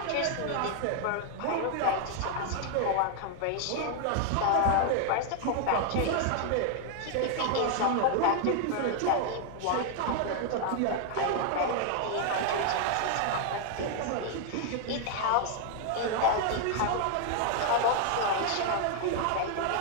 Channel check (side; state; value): both; different; correlation 0.00